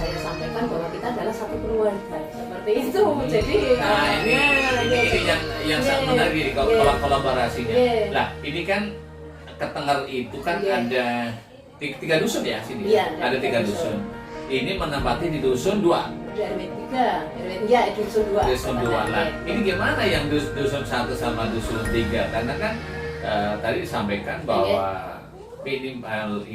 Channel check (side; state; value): both; identical; correlation 1.00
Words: sampaikan bahwa kita adalah satu keluarga seperti itu. Jadi ini yang sangat menarik kolaborasinya. Nah ini kan Ketengar itu kan ada 3 dusun ya sini. Iya, ada 3 dusun. Ini menempati di dusun 2. RW 3, ya dusun 2. Dusun 2. Nah, ini gimana yang dusun 1 sama dusun 3? Karena kan tadi disampaikan bahwa minimal